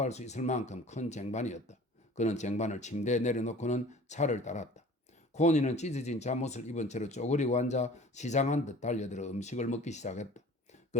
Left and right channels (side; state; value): both; normal; correlation 0.45